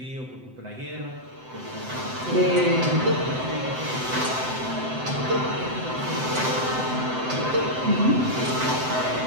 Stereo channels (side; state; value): left; late; 7.8 ms